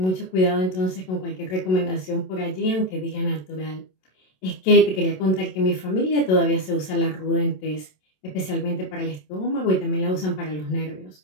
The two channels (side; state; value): right; late; 27 ms